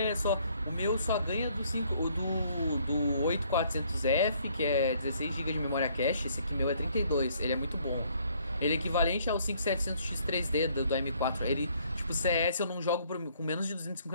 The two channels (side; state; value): both; inverted; correlation -0.64